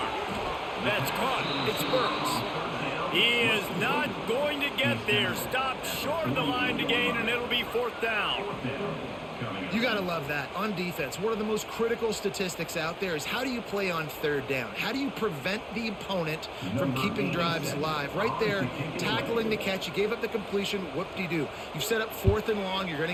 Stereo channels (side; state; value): both; identical; correlation 1.00